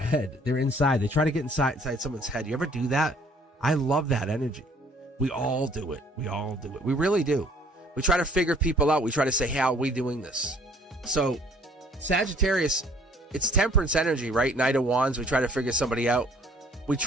They're inside. They try to get inside someone's head. You ever do that? I love that energy. We all do it. We all do it. We really do. We try to figure people out. We try to say, how are we doing this? So, Sagittarius, it's temperance energy, right? Knight of Wands. We try to figure somebody out. We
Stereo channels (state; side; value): normal; both; correlation 0.57